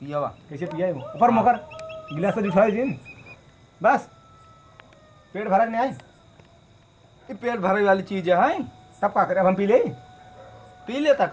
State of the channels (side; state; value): both; identical; correlation 1.00